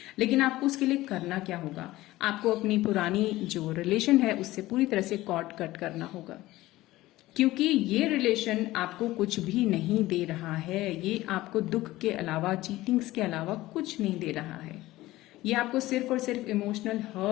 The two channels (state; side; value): quieter; right; 17.3 dB